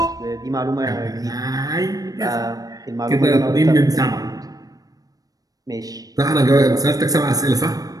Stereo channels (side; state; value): left; late; 0.18 ms